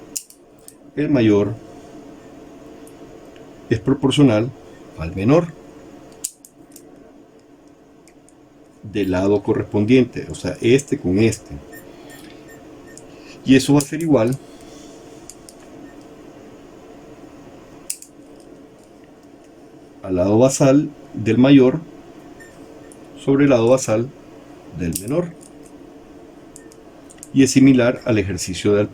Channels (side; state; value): both; identical; correlation 1.00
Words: El mayor es proporcional al menor del lado correspondiente, o sea, este con este. Y eso va a ser igual al lado basal del mayor sobre el lado basal del menor. Y es similar al ejercicio del